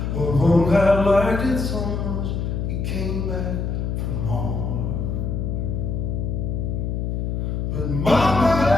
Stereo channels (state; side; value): noise; left; hum, 1 dB below the sound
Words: Well, Monk had liked it so much, he came back for more. But Mama,